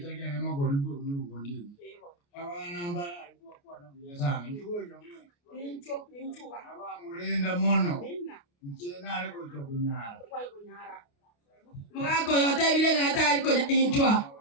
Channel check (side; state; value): right; late; 29 ms